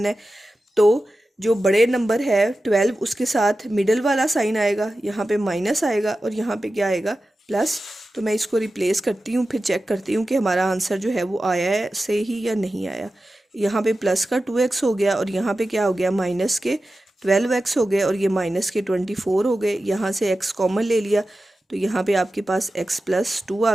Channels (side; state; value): both; normal; correlation 0.93